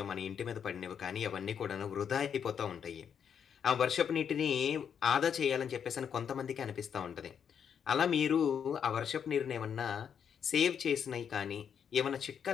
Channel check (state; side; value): quieter; right; 7.8 dB